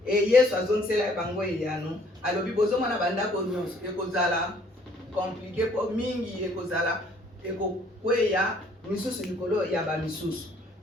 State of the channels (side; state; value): both; normal; correlation 0.60